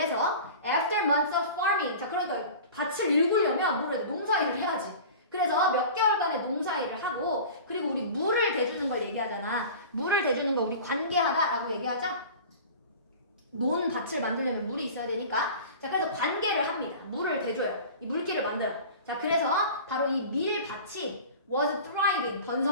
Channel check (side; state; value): both; inverted; correlation -0.38